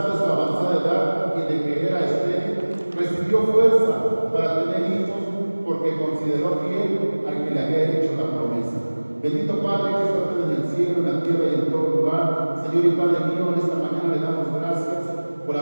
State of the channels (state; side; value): inverted; both; correlation -1.00